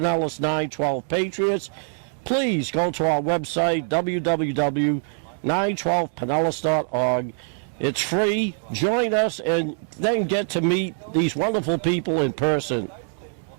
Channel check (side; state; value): left; silent; digital silence